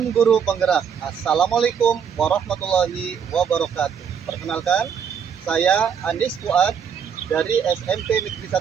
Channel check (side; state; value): left; quieter; 7.4 dB